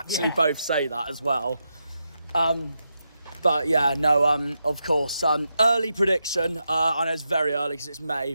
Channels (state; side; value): inverted; both; correlation -0.86